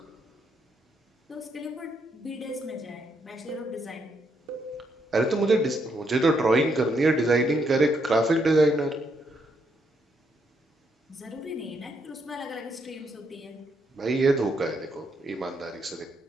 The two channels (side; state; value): both; normal; correlation 0.76